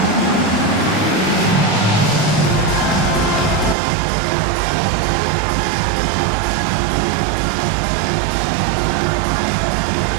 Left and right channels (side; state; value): left; drops out; at 3.8 s